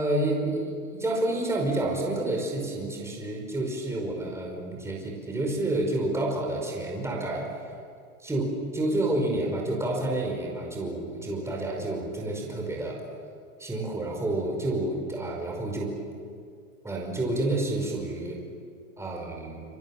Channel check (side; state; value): both; normal; correlation 0.50